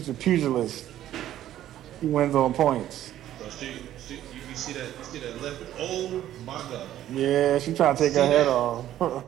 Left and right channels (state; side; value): quieter; left; 12.4 dB